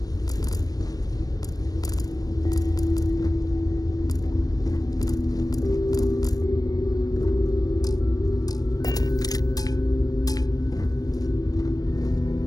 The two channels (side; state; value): right; late; 0.18 ms